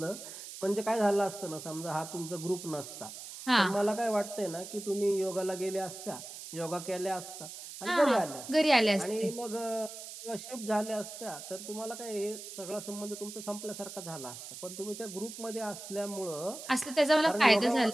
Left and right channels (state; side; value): noise; right; hiss, 11 dB below the sound